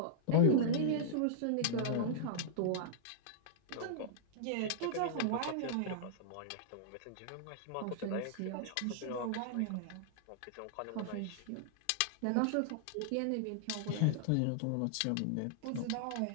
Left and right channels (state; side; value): different; both; correlation -0.02